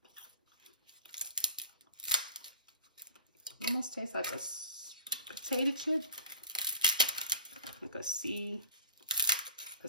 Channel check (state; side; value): inverted; both; correlation -0.43